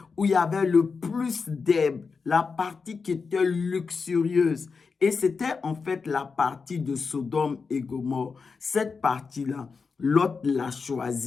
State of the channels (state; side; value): quieter; right; 5.0 dB